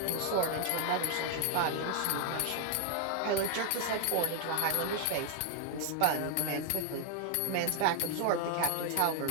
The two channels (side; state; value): both; different; correlation 0.00